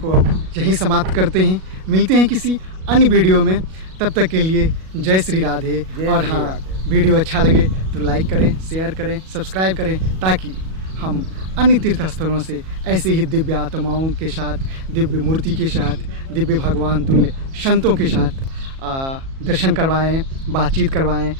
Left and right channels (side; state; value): left; late; 37 ms